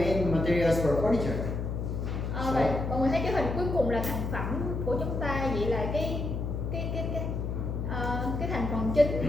materials for furniture? Vậy mọi người thấy cái hình cuối cùng là thành phẩm của chúng ta, vậy là cái thành phần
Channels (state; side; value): noise; left; hum, 2 dB below the sound